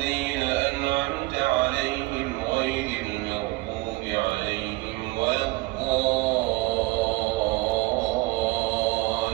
أنعمت عليهم غير المغضوب عليهم ولا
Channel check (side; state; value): left; quieter; 21.8 dB